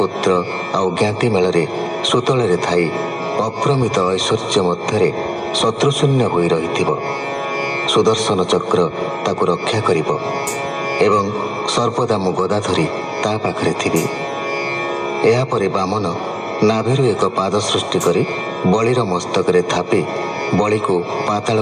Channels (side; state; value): both; identical; correlation 1.00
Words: आउ ज्ञाति मेल सुतल थाई अप्रमित ऐश्वर्य मध्य शत्रुशून्य होई रहिथिब। सुदर्शन चक्र ताकु रक्षा करिब एवं सर्पदा मु गदा धरी ता पाखरे थिबी। एहा परे बामन नाभिरु एक पाद सृष्टि करी बलिर मस्तक रे थापी बलि को पाताल